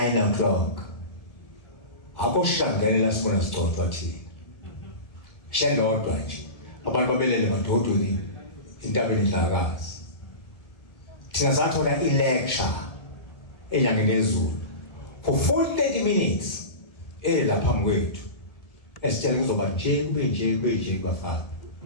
o'clock. Akoshangela sibona sigcotshwa thina. Shelodwa nje. Abantu babelele madodweni Indabenkulu. Thina sathola i-lecture enyangeni yezulu for 40 minutes lapha phambi kwethu. Esitshela kuzoba nje kube nje bafana.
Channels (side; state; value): right; late; 1.7 ms